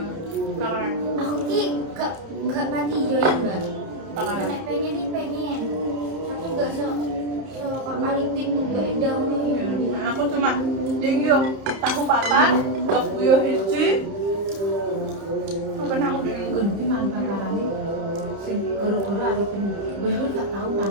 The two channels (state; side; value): late; left; 30 ms